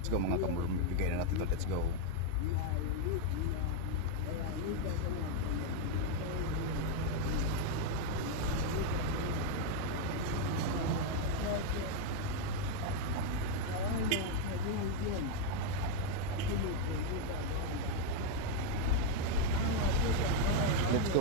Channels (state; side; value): different; both; correlation 0.01